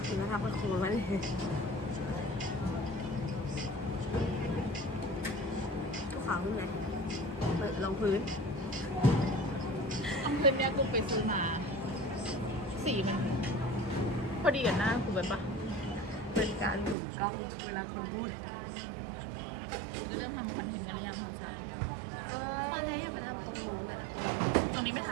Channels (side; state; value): left; drops out; at 16.9 s